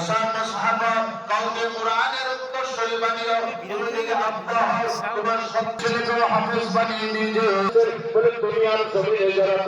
সাহাবা কাউকে কোরআনের উত্তরসূরি বানিয়ে দুনিয়াকে আব্বা তোমার সব ছেলেকে হাফেজ বানিয়ে দিয়েছে। বলে দুনিয়ার জমিনে যারা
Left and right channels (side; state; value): both; identical; correlation 1.00